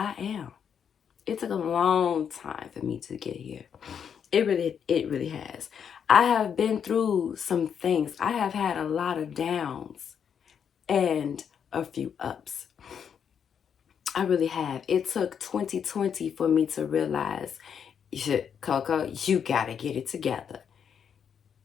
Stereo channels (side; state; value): right; quieter; 7.7 dB